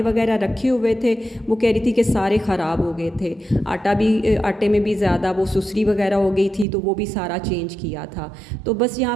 वगैरह रखे हुए थे वो कह रही थी कि सारे ख़राब हो गए थे। आटे में भी ज़्यादा वो सुसरी वगैरह हो गई थी, तो वो भी सारा चेंज किया था। तो बस यहाँ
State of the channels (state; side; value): drops out; left; at 6.7 s